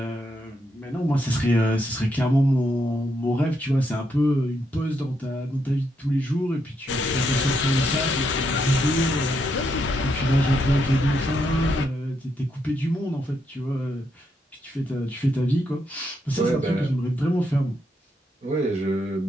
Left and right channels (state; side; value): normal; both; correlation 0.79